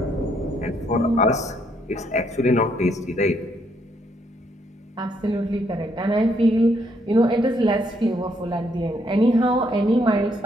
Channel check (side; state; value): both; normal; correlation 0.72